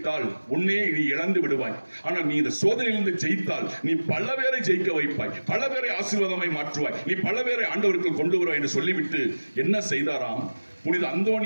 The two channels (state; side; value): inverted; both; correlation -1.00